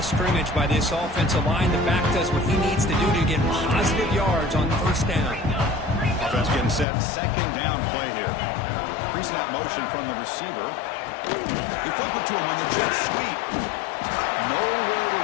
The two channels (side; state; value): right; drops out; at 6.9 s